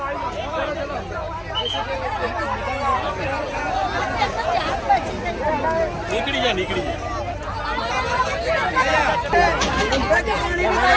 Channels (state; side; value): identical; both; correlation 1.00